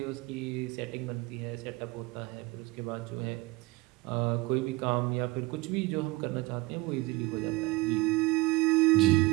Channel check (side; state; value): left; quieter; 21.9 dB